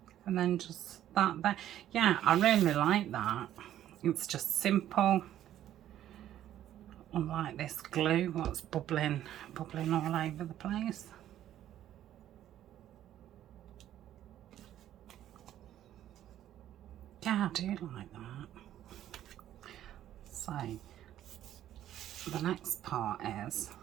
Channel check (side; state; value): left; quieter; 12.0 dB